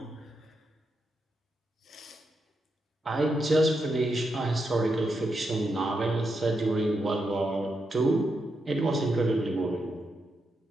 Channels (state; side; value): normal; both; correlation 0.84